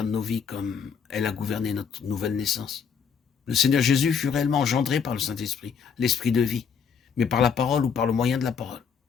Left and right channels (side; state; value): right; quieter; 6.7 dB